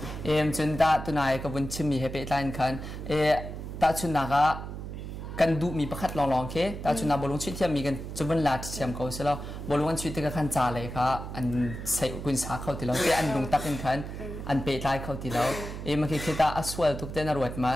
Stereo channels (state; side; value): noise; right; hum, 8 dB below the sound